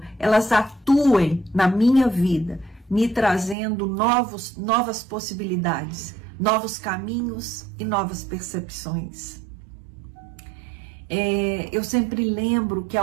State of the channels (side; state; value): left; drops out; at 3.6 s